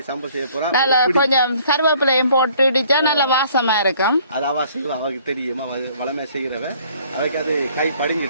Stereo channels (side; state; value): both; inverted; correlation -0.58